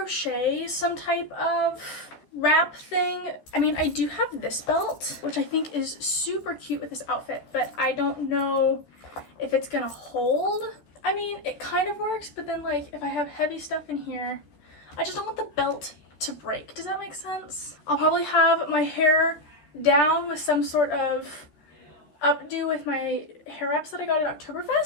some type of wrap thing. I mean, I do have this belt, which I think is super cute with this outfit, but I don't know if it's gonna hold. I mean, it kind of works, but then like if I have heavy stuff in here, I just don't want the belt to break. Does that make sense? I'll probably have my hair down with some sort of updo with my hair wraps that I got at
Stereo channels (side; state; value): right; late; 13 ms